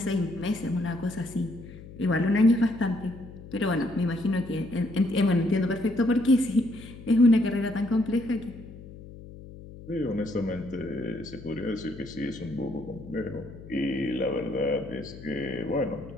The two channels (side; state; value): left; noise; hum, 16 dB below the sound